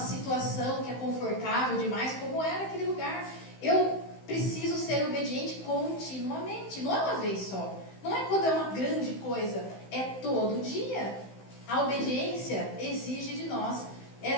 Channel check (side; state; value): right; late; 16 ms